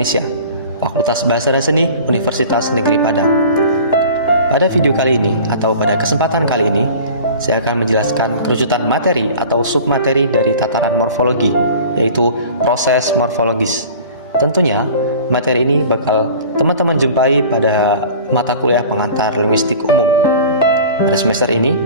Fakultas Bahasa dan Seni, Universitas Negeri Padang. Pada video kali ini atau pada kesempatan kali ini, saya akan menjelaskan kerucutan materi atau submateri dari tataran morfologi, yaitu proses morfologis. Tentunya, materi ini bakal teman-teman jumpai pada mata kuliah pengantar linguistik umum. Pada semester ini,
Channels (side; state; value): both; inverted; correlation -0.42